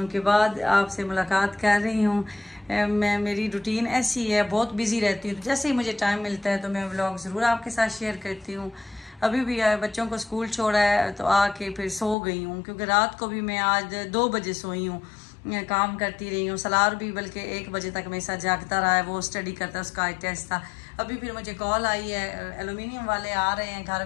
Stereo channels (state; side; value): drops out; right; at 12.2 s